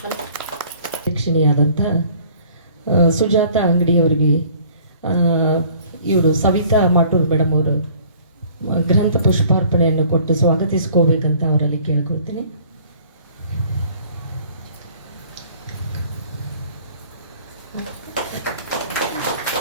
ಅಧ್ಯಕ್ಷಿಣಿಯಾದಂಥ ಸುಜಾತ ಅಂಗಡಿಯವರಿಗೆ ಇವರು ಸವಿತಾ ಮಾಟೂರ್ ಮೇಡಮ್ ಅವರು ಗ್ರಂಥ ಪುಷ್ಪಾರ್ಪಣೆಯನ್ನು ಕೊಟ್ಟು ಸ್ವಾಗತಿಸ್ಕೋಬೇಕಂತ ಅವರಲ್ಲಿ ಕೇಳ್ಕೊಳ್ತೀನಿ.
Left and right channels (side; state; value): both; inverted; correlation -0.53